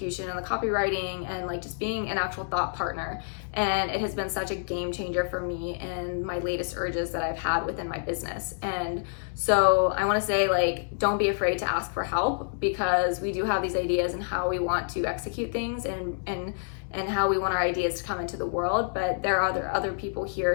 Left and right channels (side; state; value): right; silent; digital silence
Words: and the copywriting and like just being an actual thought partner. And it has been such a game changer for me and my latest urges that I've had within my business. And so I want to say, like, don't be afraid to ask for help, because we do have these ideas and how we want to execute things and how we want our ideas to come into the world. But there are other people